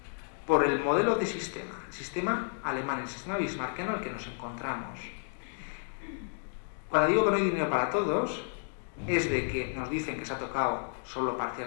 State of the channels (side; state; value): right; silent; digital silence